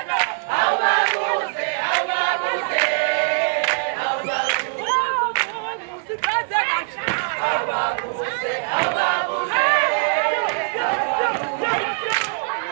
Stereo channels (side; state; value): left; silent; 60 dB below the other